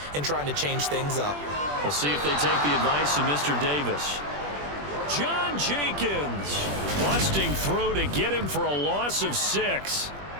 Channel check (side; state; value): left; late; 21 ms